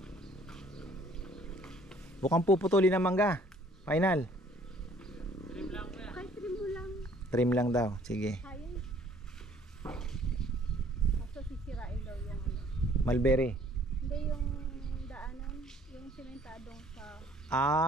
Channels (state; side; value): normal; both; correlation 0.58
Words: Bukang puputulin ng mangga. Final. Okay, trim mo lang. Trim lang daw. Sige. Kaya. Kaso sisirain daw yung ano. Mulberry. Hindi yung daanan, yung simentadong sa...